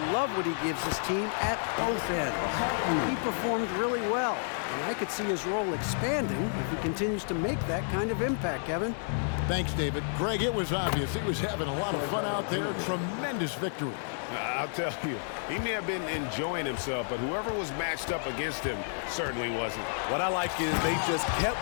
love what he gives his team at both ends. He performed really well, and I could see his role expanding if he continues to make that kind of impact, Kevin. Thanks, David. Greg, it was obvious he was having a lot of fun out there. Tremendous victory. I'll tell you, he may have been enjoying himself, but whoever was matched up against him certainly wasn't. What I like is they just kept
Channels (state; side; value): silent; right; digital silence